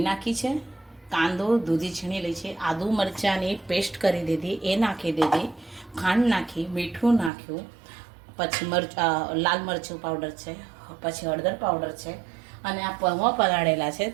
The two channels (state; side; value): drops out; left; at 7.3 s